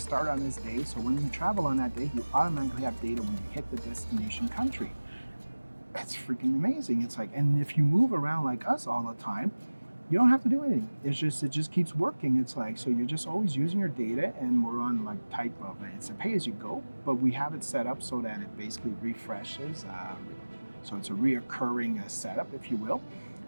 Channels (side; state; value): both; inverted; correlation -1.00